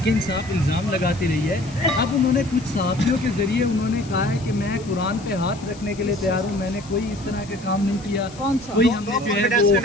انصاف الزام لگاتی رہی ہے، اب انہوں نے کچھ صحافیوں کے ذریعے انہوں نے کہا ہے کہ میں قرآن پہ ہاتھ رکھنے کے لیے تیار ہوں، میں نے کوئی اس طرح کے کام نہیں کیا، کون سا؟ کوئی ہم نے جو ہے وہ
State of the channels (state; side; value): noise; left; hiss, 20 dB below the sound